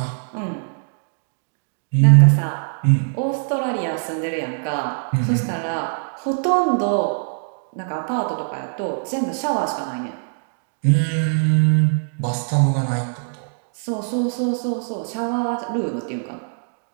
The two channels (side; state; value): left; silent; digital silence